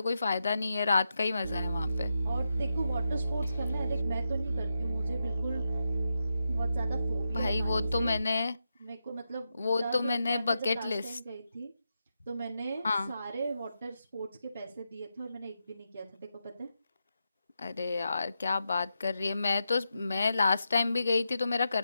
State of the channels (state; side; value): inverted; both; correlation -0.87